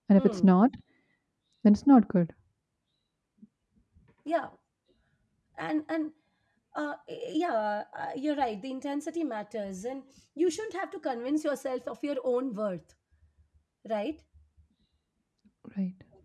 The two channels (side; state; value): both; identical; correlation 1.00